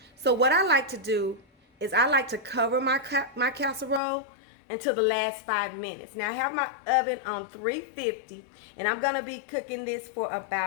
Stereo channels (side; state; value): right; drops out; at 4.0 s